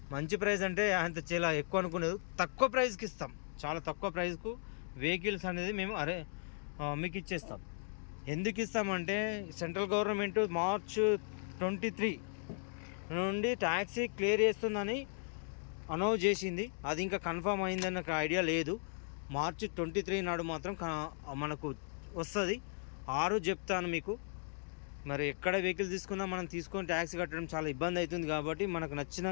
మంచి ప్రైస్ అంటే అంత చాలా ఎక్కువ అనుకునేది, తక్కువ ప్రైస్కి ఇస్తాం. చాలా తక్కువ ప్రైస్కు వెహికల్స్ అనేది మేము మీకు ఇచ్చేస్తాం. ఎందుకు ఇస్తామంటే సెంట్రల్ గవర్నమెంట్ March 23 నుండి ట్యాక్సీ క్లియర్ చేస్తుందని అనౌన్స్ చేసింది. అది ఇంకా కన్ఫర్మ్ అయిందని నాకు ఐడియా లేదు. March 23 నాడు మాత్రం మనకు వస్తుంది. ఆ రోజు చెప్తాను మీకు. మరి ఎక్కడ వెహికల్ తీసుకున్నా మనం తీసుకొని ట్యాక్సీ కట్టడం చాలా ఇబ్బంది అవుతుంది. కాబట్టి మనకు నచ్చిన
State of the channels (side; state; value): right; silent; 53 dB below the other